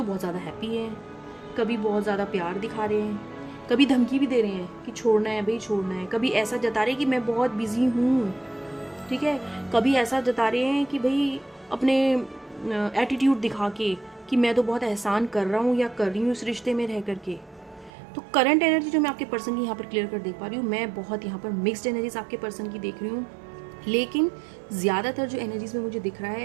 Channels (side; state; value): left; drops out; at 17.9 s